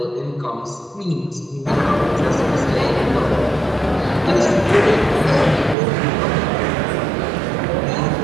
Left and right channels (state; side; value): drops out; left; at 5.8 s